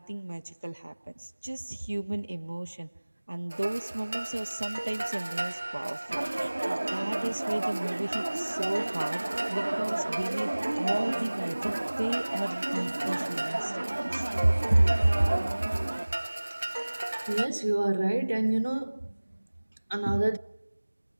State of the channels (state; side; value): inverted; both; correlation -1.00